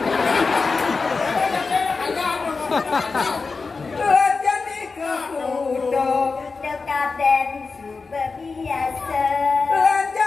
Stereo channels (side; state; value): right; quieter; 4.4 dB